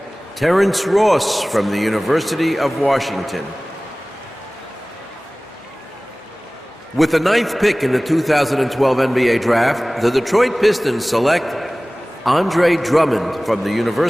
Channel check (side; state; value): both; normal; correlation 0.98